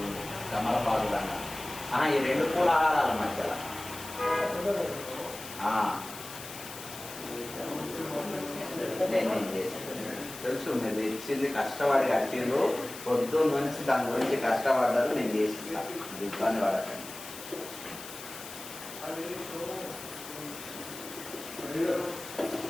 కమలపాడు ఈ రెండు పూల ఆహారాల మధ్యలో తెలుసు మీరు తెచ్చింది కష్టపడి కట్టిండ్రు పొద్దున్న నుంచి దాని గురించి కష్టపడ్డారు నేను చేసిస్తా ఇబ్బంది పడకండి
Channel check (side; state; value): left; noise; hiss, 12 dB below the sound